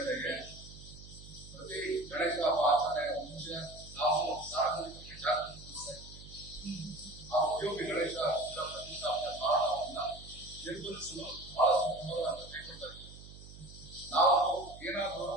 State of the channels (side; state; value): right; noise; hum, 16 dB below the sound